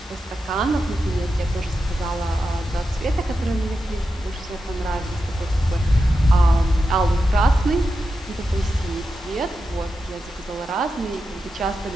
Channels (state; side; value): normal; both; correlation 0.89